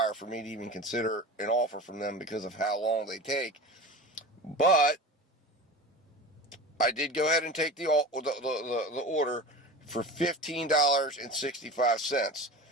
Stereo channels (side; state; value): both; normal; correlation 0.32